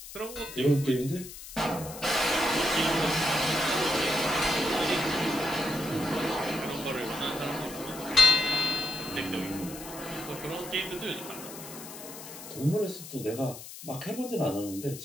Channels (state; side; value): noise; left; hiss, 13 dB below the sound